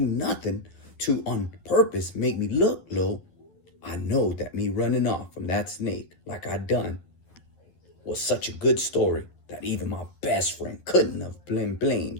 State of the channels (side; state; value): right; late; 11 ms